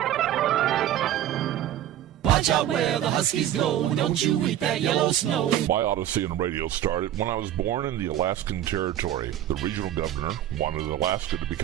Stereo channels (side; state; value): left; quieter; 11.8 dB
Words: Watch out where the Huskies go, don't you eat that yellow snow. My odyssey in radio started when I was born in the Alaskan Territory. The regional governor wanted Alaska to